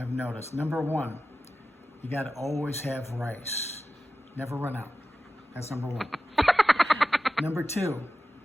noticed, number one, you got to always have rice. Never run out. That's number one. Number two,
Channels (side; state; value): both; normal; correlation 0.94